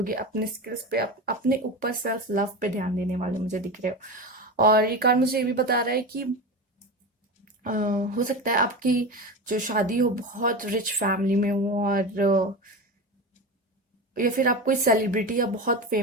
अपने स्किल्स पे, अपने ऊपर सेल्फ लव पे ध्यान देने वाले मुझे दिख रहे हो। और ये कार्ड मुझे ये भी बता रहा है कि अ, हो सकता है आपकी जो शादी हो बहुत रिच फैमिली में हो, और या फिर आप कोई सेलिब्रिटी या बहुत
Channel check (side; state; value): both; normal; correlation 0.24